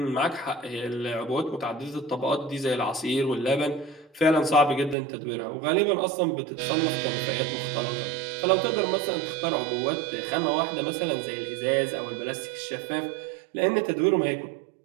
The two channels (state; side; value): drops out; left; at 5.0 s